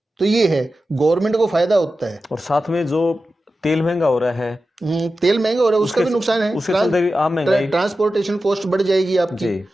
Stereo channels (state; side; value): normal; both; correlation 0.92